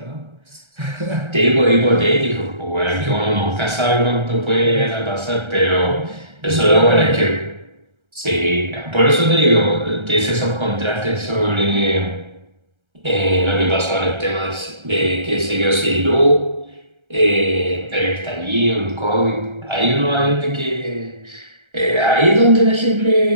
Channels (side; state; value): left; late; 1.3 ms